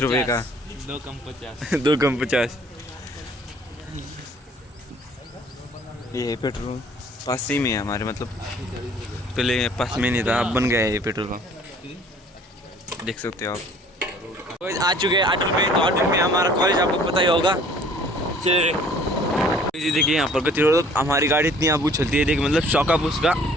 रुपये का, 2 कम 50। 2 कम 50। ये है पेट्रोल, पास ही में है हमारे, मतलब पहले पास में नहीं था, अब बन गया है ये पेट्रोल पंप, देख सकते हो आप। तो आ चुके हैं अटल में, तो अटल में हमारा कॉलेज आपको पता ही होगा। चलिए देखिए यहाँ पर गति रोड, हमारी गाड़ी इतनी आबू चलती है, देखिए मतलब शौकअप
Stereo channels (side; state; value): both; normal; correlation 0.54